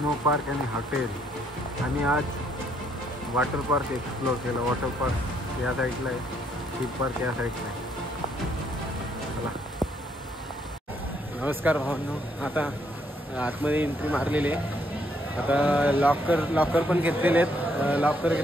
park आणि हॉटेल. आणि आज वॉटर पार्क एक्सप्लोर केलं. वॉटर पार्क या साईडला आहे, थीम पार्क या साईडला आहे. चला, नमस्कार भावांनो. आता आतमध्ये एंट्री मारलेली आहे. आता लॉकर पण घेतलेले आहेत. लॉकर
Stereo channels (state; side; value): normal; both; correlation 0.71